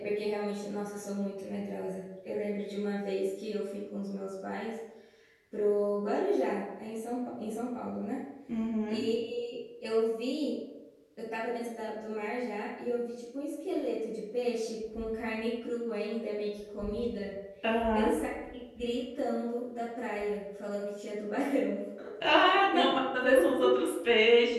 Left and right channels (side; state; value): both; identical; correlation 1.00